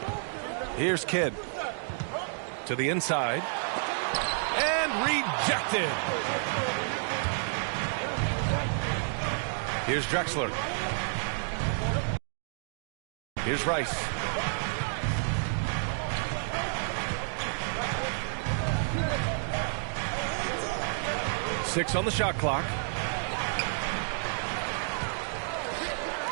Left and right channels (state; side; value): silent; left; digital silence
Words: Here's Kidd. To the inside. And rejected. Here's Drexler. Here's Rice. Six on the shot clock.